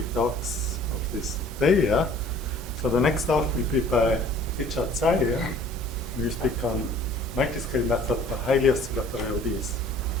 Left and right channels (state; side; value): normal; both; correlation 0.52